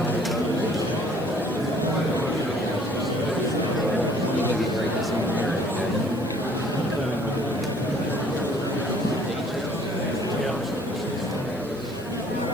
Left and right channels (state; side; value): noise; right; hiss, 24 dB below the sound